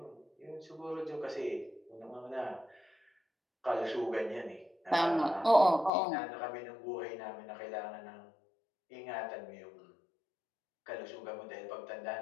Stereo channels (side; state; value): right; drops out; at 5.9 s